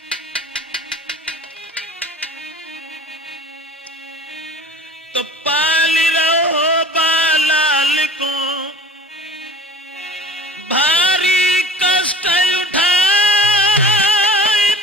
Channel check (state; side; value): normal; both; correlation 0.42